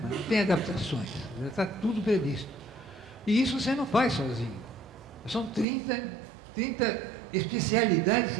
Não tem adaptações, já está tudo previsto. E isso você não faz sozinho. São 30 especialidades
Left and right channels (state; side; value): drops out; left; at 5.7 s